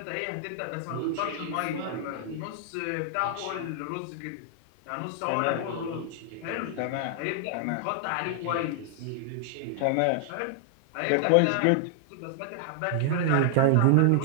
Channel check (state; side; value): different; both; correlation 0.00